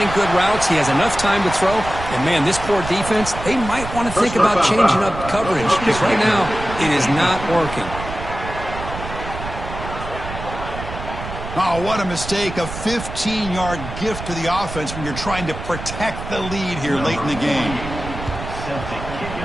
good routes. He has enough time to throw. And, man, this poor defense, they might want to think about changing up coverage because right now it is not working. Oh, what a mistake. A 15-yard gift to the offense when you're trying to protect the lead here late in the game.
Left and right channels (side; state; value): right; noise; rumble, 9 dB below the sound